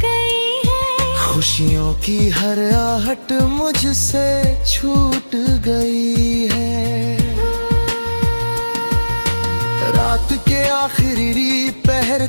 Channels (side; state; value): both; inverted; correlation -1.00